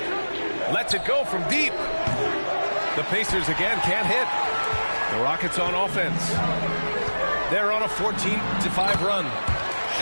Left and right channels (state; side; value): inverted; both; correlation -1.00